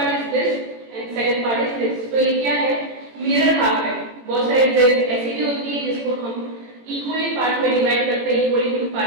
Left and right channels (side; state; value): left; late; 18 ms